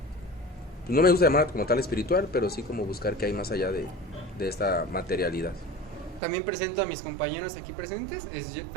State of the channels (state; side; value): drops out; left; at 6.2 s